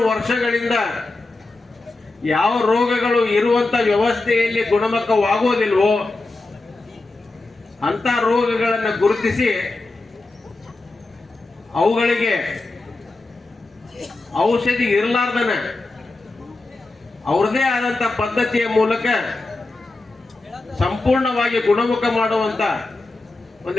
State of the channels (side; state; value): right; quieter; 3.2 dB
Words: ವರ್ಷಗಳಿಂದ ಯಾವ ರೋಗಗಳು ಇರುವಂತ ವ್ಯವಸ್ಥೆಯಲ್ಲಿ ಗುಣಮುಖವಾಗುವುದಿಲ್ವೋ ಅಂತ ರೋಗಗಳನ್ನು ಗುರುತಿಸಿ ಅವುಗಳಿಗೆ ಔಷಧಿ ಇರಲಾರ್ದನ ಅವ್ರದೇ ಆದಂತ ಪದ್ಧತಿಯ ಮೂಲಕ ಸಂಪೂರ್ಣವಾಗಿ ಗುಣಮುಖ ಮಾಡುವಂತ